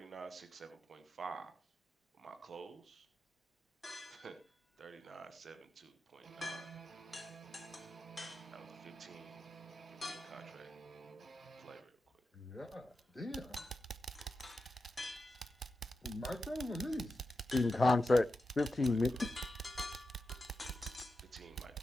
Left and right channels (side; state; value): both; normal; correlation 0.90